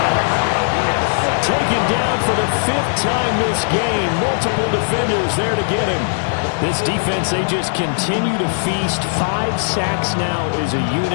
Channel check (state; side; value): silent; right; digital silence